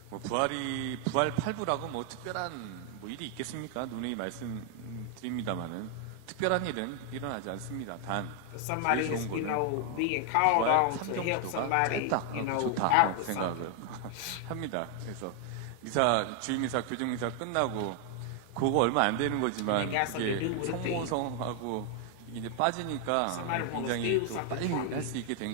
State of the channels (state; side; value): different; both; correlation 0.00